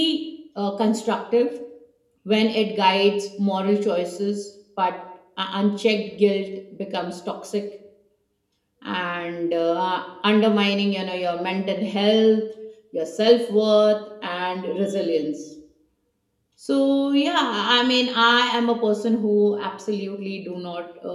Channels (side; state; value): both; identical; correlation 1.00